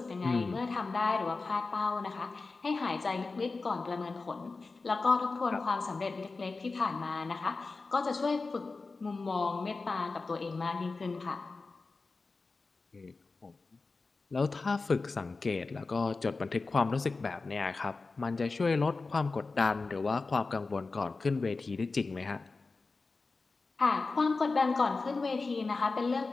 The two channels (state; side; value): quieter; right; 3.9 dB